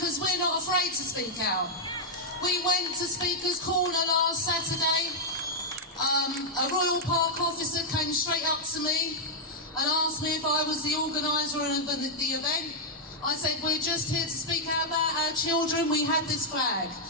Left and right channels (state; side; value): normal; both; correlation -0.05